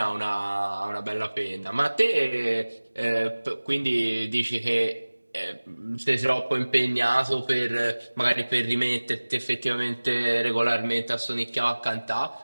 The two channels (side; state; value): both; inverted; correlation -1.00